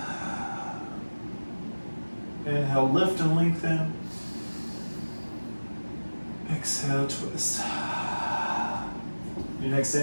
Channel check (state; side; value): inverted; both; correlation -1.00